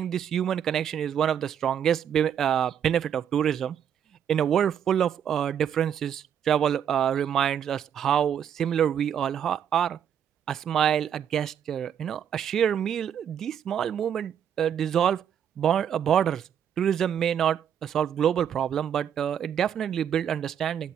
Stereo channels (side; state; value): left; quieter; 8.9 dB